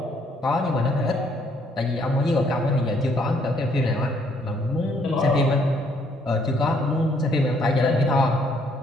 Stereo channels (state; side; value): normal; both; correlation 0.67